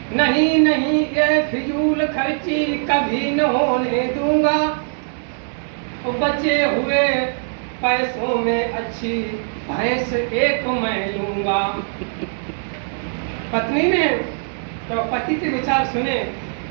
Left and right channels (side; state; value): left; silent; 65 dB below the other